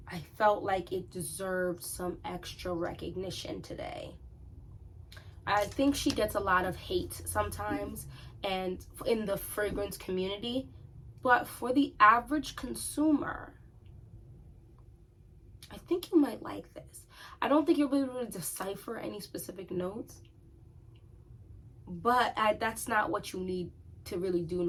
I felt like it deserved some extra recognition today. I think she gets a lot of hate sometimes and in the fragrance community, but for the average consumer, I think you might like this. I don't think you'll be able to decipher any specific notes, but that's not what you need to really do in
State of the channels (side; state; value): both; identical; correlation 1.00